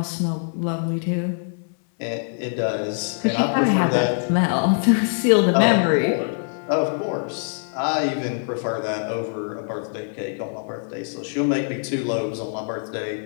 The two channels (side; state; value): right; silent; digital silence